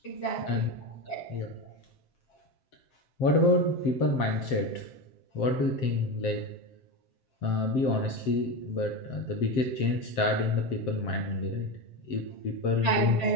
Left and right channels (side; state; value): right; late; 7.6 ms